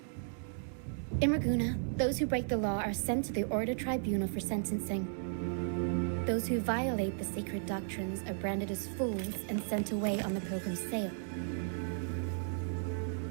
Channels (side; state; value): left; silent; digital silence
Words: In Raguna, those who break the law are sent to the Order Tribunal for sentencing. Those who violate the sacred doctrines are branded as fools and sent away on the pilgrim sale.